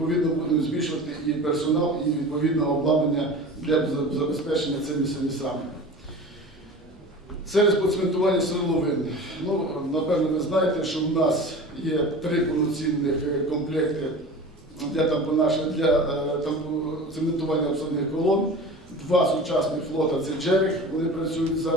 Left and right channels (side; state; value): both; normal; correlation 0.36